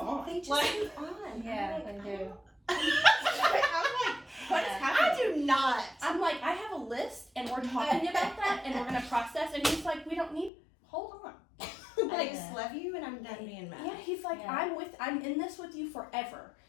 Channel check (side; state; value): right; drops out; at 10.5 s